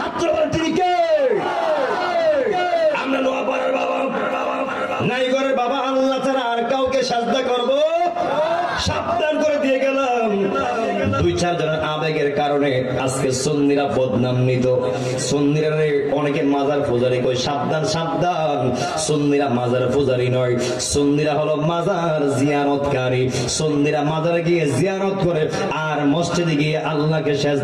তিনি কে? আমরা নোয়াপাড়ার বাবা নাই করে বাবা আল্লাহ ছাড়া আর কাউকে সিজদা করবো? সাবধান করে দিয়ে গেলাম। দুই চার জনের আবেগের কারণে আজকে সুন্নিরা বদনামিত। সুন্নিরা অনেকে মাজার পূজারি কই, সাবধান সাবধান, সুন্নিরা মাজার পূজারি নয়, সুন্নিরা হলো মাজার জিয়ারতকারী। সুন্নিরা মাজারে গিয়ে জিয়ারত করে আর মসজিদে গিয়ে আল্লাহকে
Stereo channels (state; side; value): identical; both; correlation 1.00